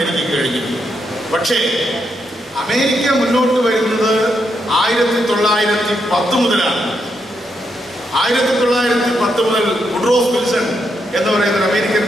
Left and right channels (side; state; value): both; normal; correlation 0.80